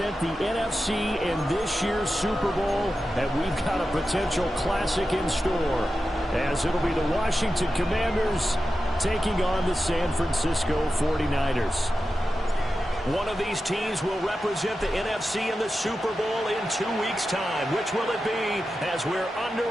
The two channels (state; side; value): normal; both; correlation 0.92